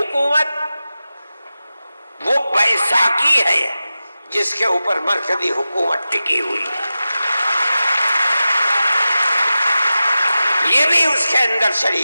وہ بیساکھی ہے جس کے اوپر مرکزی حکومت ٹکی ہوئی ہے، یہ بھی اس کے اندر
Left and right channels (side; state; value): both; inverted; correlation -0.94